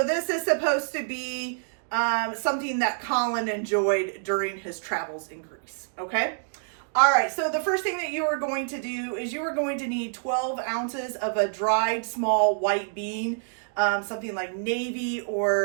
this is supposed to be something that Colin enjoyed during his travels in Greece, okay? All right, so the first thing that you are going to do is you are going to need 12 ounces of a dried small white bean, something like navy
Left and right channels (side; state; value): left; silent; digital silence